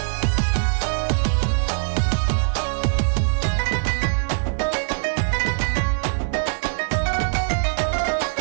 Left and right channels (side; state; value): left; silent; digital silence